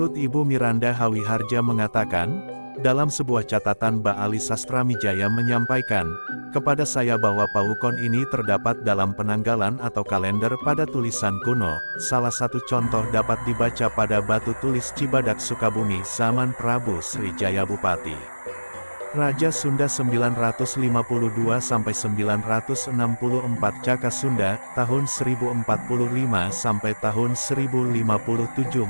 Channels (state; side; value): inverted; both; correlation -1.00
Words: Ibu Miranda Hawiharja mengatakan, dalam sebuah catatan Mbak Ali Sastramijaya menyampaikan, kepada saya bahwa pawukon ini terdapat dalam penanggalan atau kalender pada tulisan kuno. Salah satu contoh dapat dibaca pada batu tulis Cibadak Sukabumi zaman Prabu Srijaya Bupati. Raja Sunda 952-964 Caka Sunda, tahun 1045 sampai tahun 1057